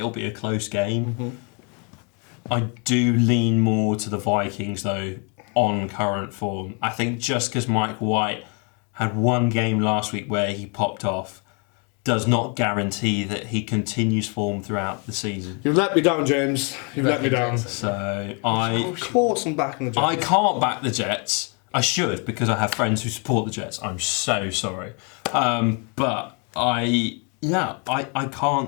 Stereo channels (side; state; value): right; quieter; 35.8 dB